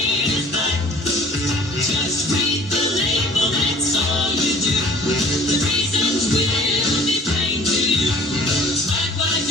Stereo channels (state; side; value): normal; both; correlation 0.50